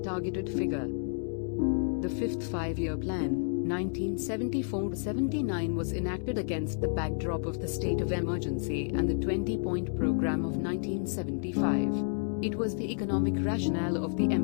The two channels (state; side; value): silent; right; digital silence